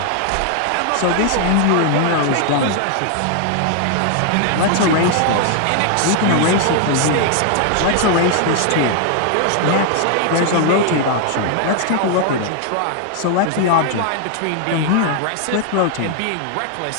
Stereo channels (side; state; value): both; different; correlation 0.00